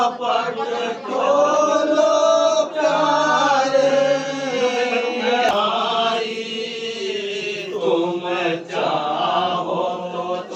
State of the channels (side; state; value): both; identical; correlation 1.00